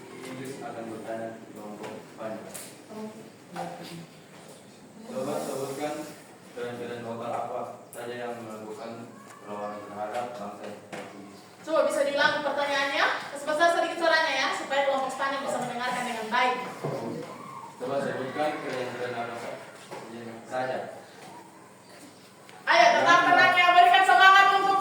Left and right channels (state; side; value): identical; both; correlation 1.00